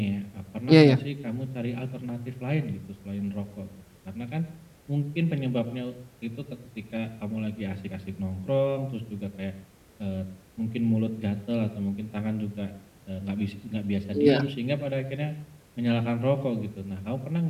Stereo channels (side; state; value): both; identical; correlation 1.00